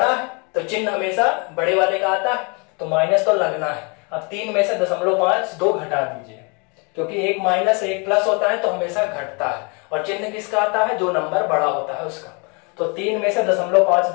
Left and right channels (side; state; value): right; quieter; 32.3 dB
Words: है तो चिन्ह हमेशा बड़े वाले का आता है, तो माइनस तो लगना है। अब 3 में से 0.52 घटा दीजिए, क्योंकि एक माइनस एक प्लस होता है तो हमेशा घटता है, और चिन्ह किसका आता है, जो नंबर बड़ा होता है उसका। तो 3 में से